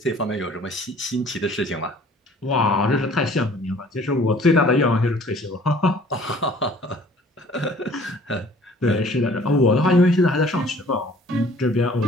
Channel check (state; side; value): normal; both; correlation 0.53